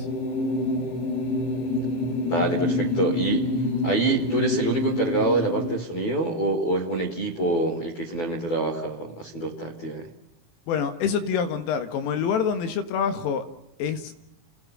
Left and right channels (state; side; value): late; right; 18 ms